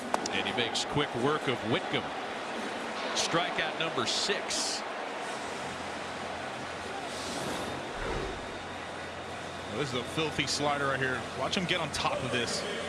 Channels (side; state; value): both; identical; correlation 1.00